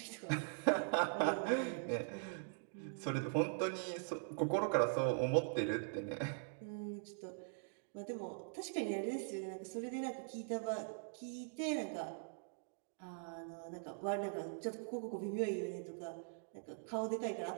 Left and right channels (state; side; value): silent; left; digital silence